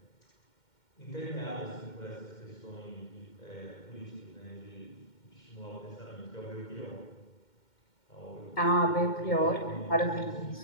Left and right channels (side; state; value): right; late; 2.1 ms